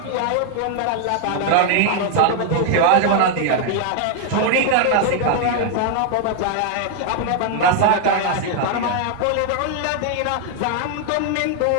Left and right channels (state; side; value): different; both; correlation 0.00